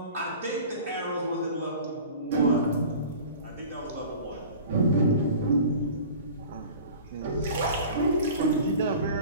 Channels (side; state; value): both; inverted; correlation -0.41